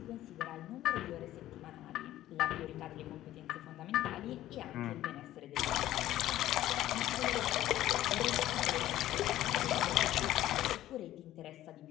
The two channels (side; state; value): right; quieter; 13.9 dB